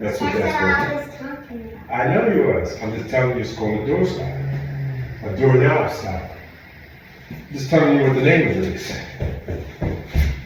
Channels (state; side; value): identical; both; correlation 1.00